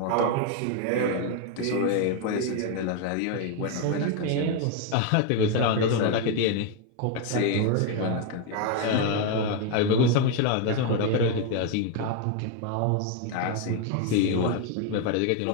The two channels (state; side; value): different; both; correlation 0.01